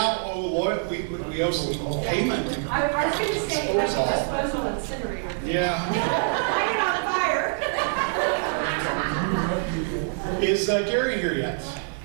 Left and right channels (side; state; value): left; silent; 62 dB below the other